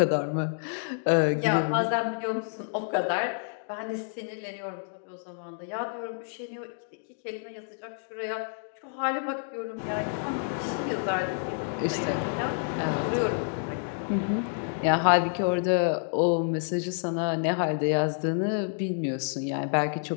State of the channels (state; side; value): silent; right; digital silence